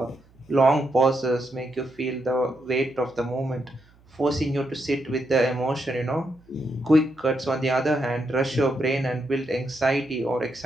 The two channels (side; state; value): right; noise; hum, 29 dB below the sound